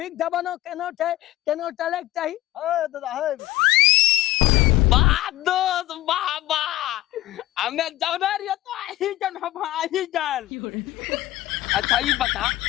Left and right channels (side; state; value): right; quieter; 16.4 dB